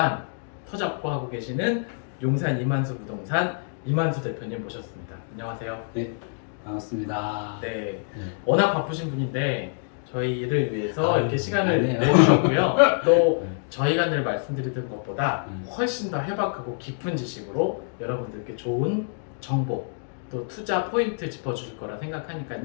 터잡고 하고 계시는 용산 이만수 부동산 이만수 대표님 모셨습니다. 안녕하세요. 네, 반갑습니다. 네, 네. 워낙 바쁘신 분인데 저희를 위해서 이렇게 시간을 아니에요. 내주셨고요. 또 네. 저희가 늘 말씀드리던 것보다 훨씬 더 해박하고 깊은 지식으로 여러분들께 좋은 정보 또 투자 포인트 짚어주실 거라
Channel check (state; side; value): silent; right; digital silence